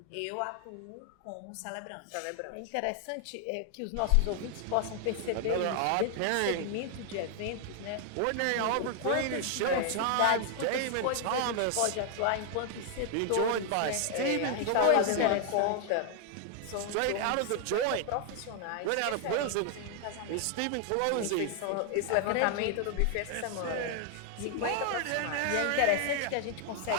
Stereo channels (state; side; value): different; both; correlation 0.00